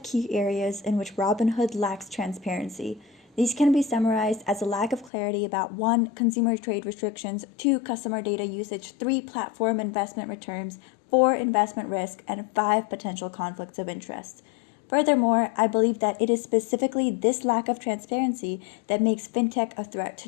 key areas in which Robinhood lacks transparency. These can be summarized as a lack of clarity about 1. Consumer trade restrictions, 2. Customer data usage, 3. Platform investment returns, 4. Investment risk, and 5. Potential conflicts of interest. Furthermore, I believe that it is specifically this lack of transparency that makes fintech a threat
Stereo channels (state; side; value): drops out; right; at 5.1 s